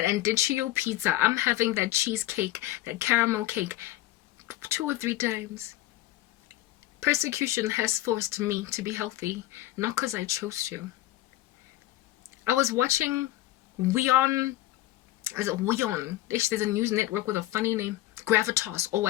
andicchio pizza. I'm having that cheesecake, that caramel cake 2 or 3 times. Persecution has forced me to be healthy, not because I chose to. I was watching Weon, is it Weon? There's a news network with a funny name, Gravitas or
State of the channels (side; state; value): right; quieter; 15.8 dB